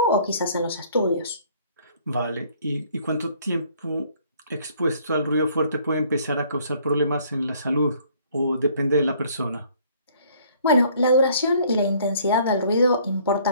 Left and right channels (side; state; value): both; inverted; correlation -0.60